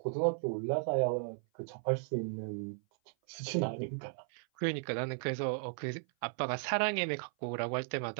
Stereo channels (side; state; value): left; silent; 54 dB below the other